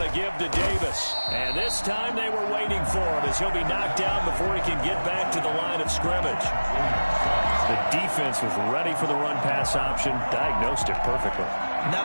a give to Davis. And this time they were waiting for him as he'll be knocked down before he can get back to the line of scrimmage. The defense was ready for the run-pass option, diagnosed it perfectly.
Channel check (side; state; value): both; inverted; correlation -1.00